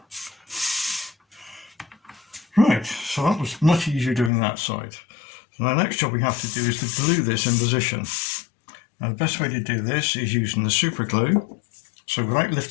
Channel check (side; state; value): right; drops out; at 4.3 s